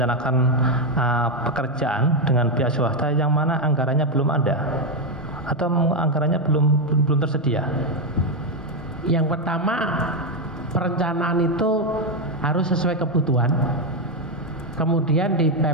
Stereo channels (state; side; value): normal; both; correlation 0.05